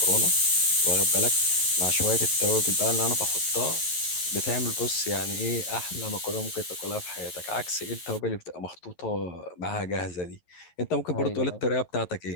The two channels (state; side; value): late; right; 11 ms